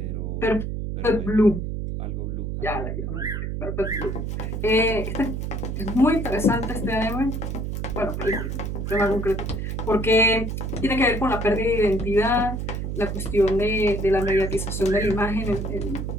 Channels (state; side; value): noise; right; hum, 3 dB below the sound